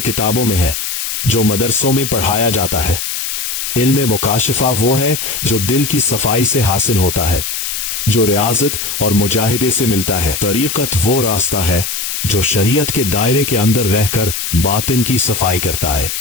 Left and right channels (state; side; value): noise; left; hiss, 3 dB below the sound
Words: किताबों में है, जो मदरसों में पढ़ाया जाता है। इल्म मुकाशिफा वो है जो दिल की सफाई से हासिल होता है, जो रियाजत और मुजाहिदे से मिलता है। तरीकत वो रास्ता है जो शरीयत के दायरे के अंदर रहकर बातिन की सफाई करता है।